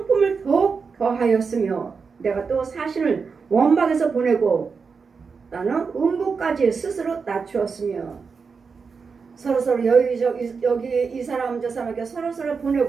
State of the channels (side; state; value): left; quieter; 5.3 dB